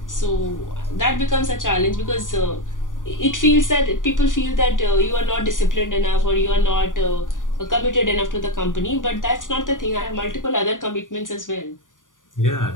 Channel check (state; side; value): late; right; 0.88 ms